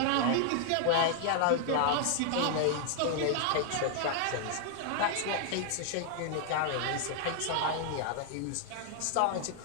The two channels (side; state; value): both; different; correlation 0.00